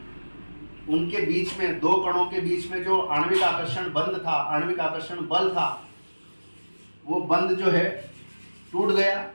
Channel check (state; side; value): inverted; both; correlation -1.00